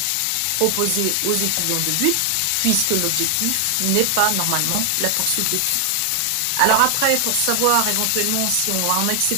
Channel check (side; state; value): both; different; correlation 0.00